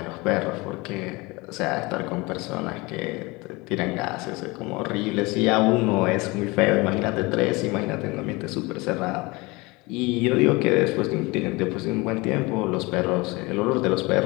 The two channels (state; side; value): quieter; right; 24.4 dB